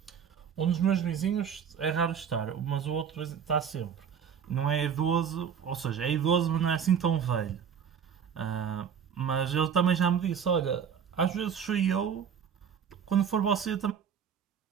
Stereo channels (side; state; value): left; quieter; 7.6 dB